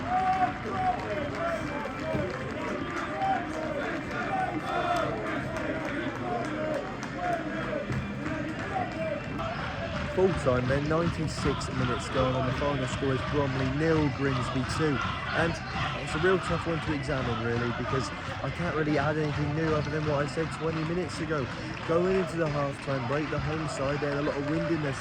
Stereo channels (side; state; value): both; identical; correlation 1.00